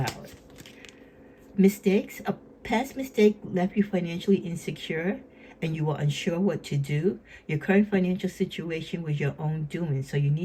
Mistakes. A past mistake left you financially insecure and you were unsure what to do. Your current financial situation was your own doing, so you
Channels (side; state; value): both; identical; correlation 1.00